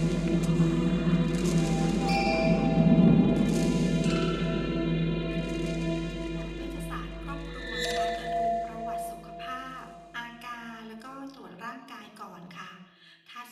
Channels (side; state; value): both; identical; correlation 1.00